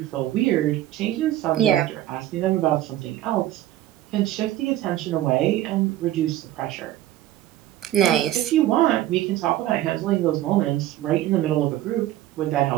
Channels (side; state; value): left; quieter; 14.0 dB